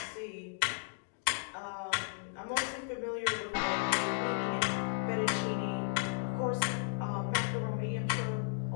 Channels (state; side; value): silent; right; digital silence